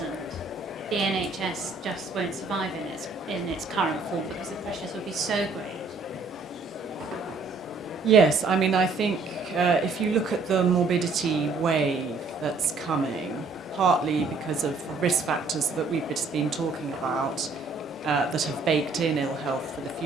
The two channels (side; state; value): left; quieter; 4.0 dB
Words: the NHS just won't survive in its current form because the pressures will be so great. Yes, I mean, I think if you look at the morbidity wave that's coming, partly because of risk factors that we've just been talking about that have baked in ill health for the